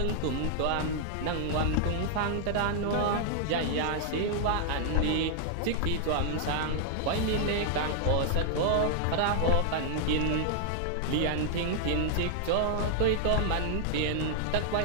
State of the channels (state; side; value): different; both; correlation 0.00